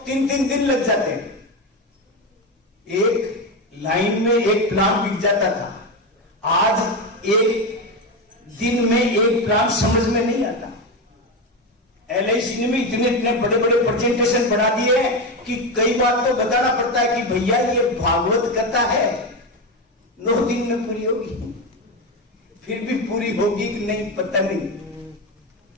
3 दिन लग जाते हैं। एक लाइन में एक प्लान बिक जाता था, आज एक दिन में एक प्लान समझ में नहीं आता। LIC ने भी इतने बड़े बड़े प्रेजेंटेशन बना दिए हैं कि कई बार तो बताना पड़ता है कि भैया ये भागवत कथा है, 9 दिन में पूरी होगी। फिर भी पूरी होगी कि नहीं पता नहीं।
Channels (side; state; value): both; normal; correlation 0.15